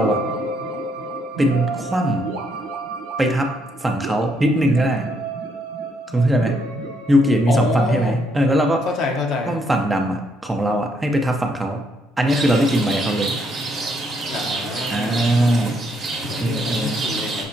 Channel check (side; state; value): both; normal; correlation 0.73